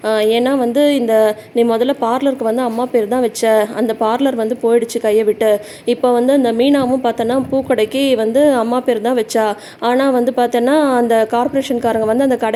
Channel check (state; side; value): identical; both; correlation 1.00